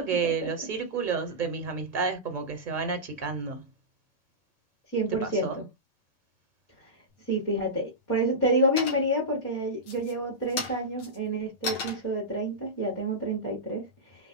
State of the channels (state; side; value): late; right; 8.0 ms